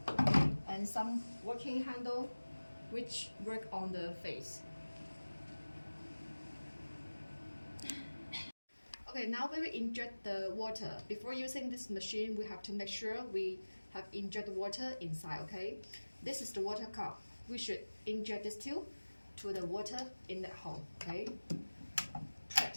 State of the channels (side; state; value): both; inverted; correlation -1.00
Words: And some working handle which work on the face. Okay, now we will inject the water. Before using this machine, we have to make sure we have inject water inside, okay? This is the water cup. We should inject this tube to the water in that hole, okay?